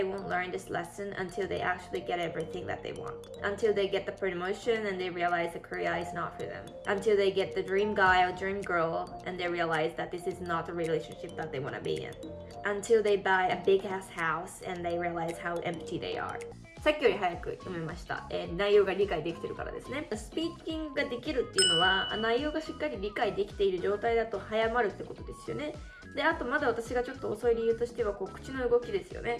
won't learn this lesson until they actually get everything that they want. Until they get the promotion and they realize the career is not for them. Until they get the dream guy or dream girl and they realize that this is not the relationship that they want to be in. Until they buy a big ass house and they realize how empty they are.さっきより早く読めました、内容が理解できてるからですね。スピーキングができるっていうのは内容がしっかり理解できている状態だと早まるってことですよね。で、あとまだ私がちょっと遅い理由としては口の動きですよ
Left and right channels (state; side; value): identical; both; correlation 1.00